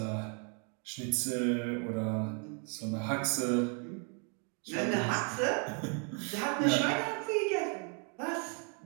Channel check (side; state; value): left; quieter; 39.7 dB